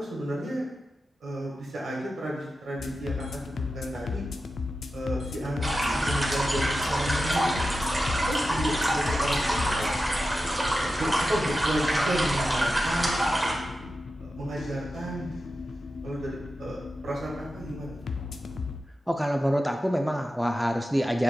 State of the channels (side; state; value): both; normal; correlation 0.92